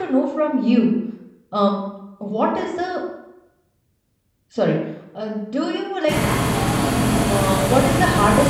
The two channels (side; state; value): both; identical; correlation 1.00